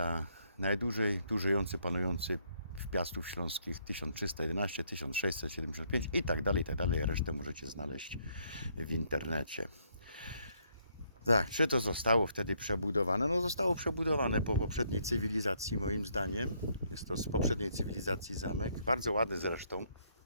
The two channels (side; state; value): both; inverted; correlation -0.70